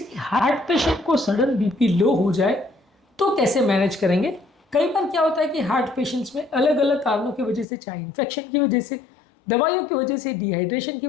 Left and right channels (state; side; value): drops out; right; at 7.7 s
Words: हार्ट पेशेंट को सडन बीपी लो हो जाए तो कैसे मैनेज करेंगे। कई बार क्या होता है कि हार्ट पेशेंट्स में अलग अलग कारणों की वजह से, चाहे इन्फेक्शन की वजह से, दवाइयों की वजह से, डिहाइड्रेशन की